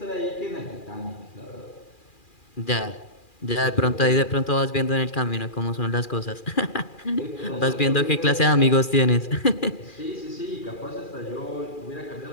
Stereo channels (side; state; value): right; late; 2.4 ms